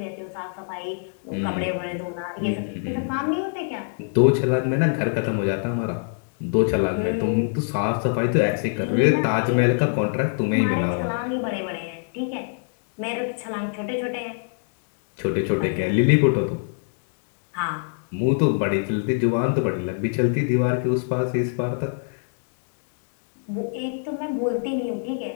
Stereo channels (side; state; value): right; silent; digital silence